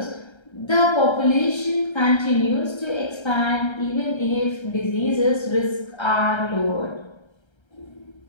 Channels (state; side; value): late; right; 1.3 ms